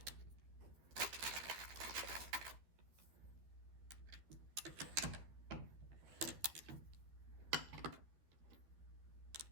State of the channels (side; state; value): left; late; 12 ms